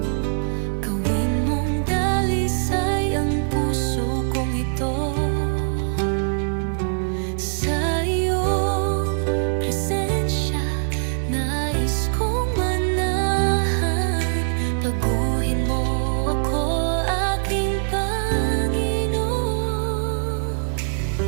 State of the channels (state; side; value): silent; left; 62 dB below the other